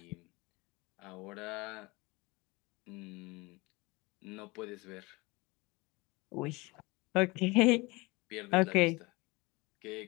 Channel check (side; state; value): right; quieter; 24.2 dB